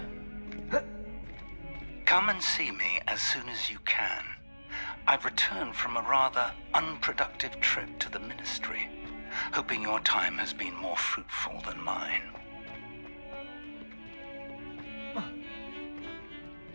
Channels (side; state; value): both; inverted; correlation -1.00